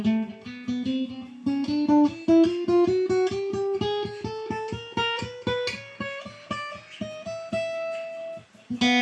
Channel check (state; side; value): identical; both; correlation 1.00